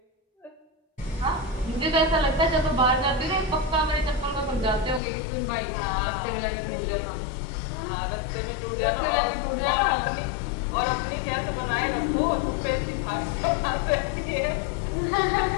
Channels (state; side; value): drops out; right; at 5.0 s